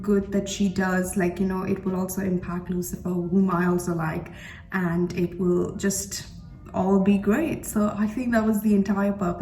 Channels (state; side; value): identical; both; correlation 1.00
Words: that she does, like, you know, it will also impact Lucifer, whom I also like, and it will just all be great. So I think that was the entire